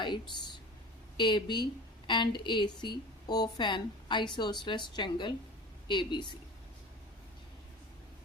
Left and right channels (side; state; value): both; normal; correlation 0.36